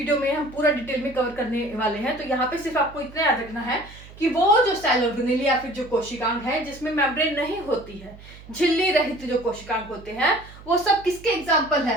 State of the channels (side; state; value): right; noise; hum, 19 dB below the sound